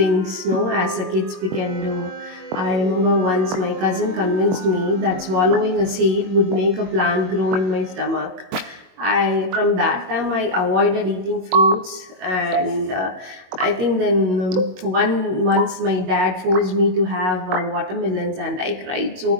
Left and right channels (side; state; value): left; late; 22 ms